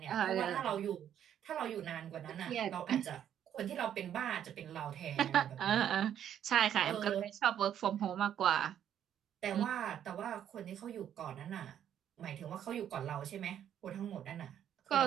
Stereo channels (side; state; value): left; quieter; 9.9 dB